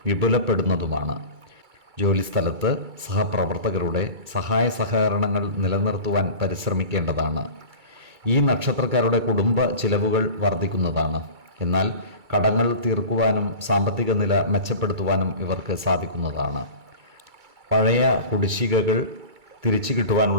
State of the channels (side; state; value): left; late; 2.3 ms